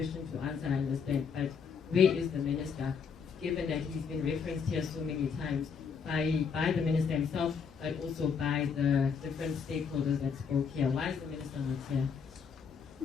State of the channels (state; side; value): quieter; right; 6.1 dB